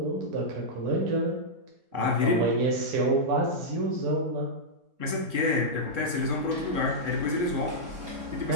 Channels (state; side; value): late; left; 3.7 ms